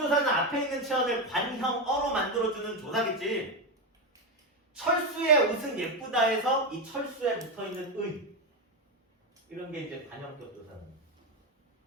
앞에 있는 체언을 관형어로 만들어주는 조사겠지. 철수의 옷은 예쁘다 해서 이 철수에 붙어있는 의 이런 게 이제 관형격 조사는 거야.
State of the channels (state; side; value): normal; both; correlation 0.11